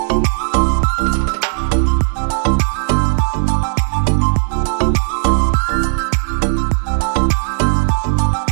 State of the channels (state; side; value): silent; left; 69 dB below the other